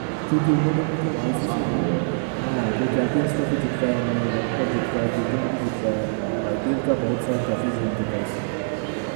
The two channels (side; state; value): left; silent; 63 dB below the other